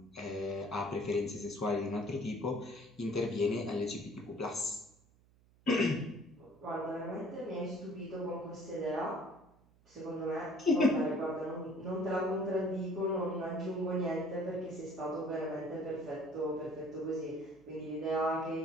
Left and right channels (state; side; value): noise; right; hum, 30 dB below the sound